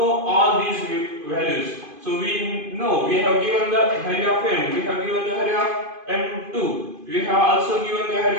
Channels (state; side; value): late; left; 2.5 ms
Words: all these values. So we know we have given the value of m, we have given the value of m2, we have also given the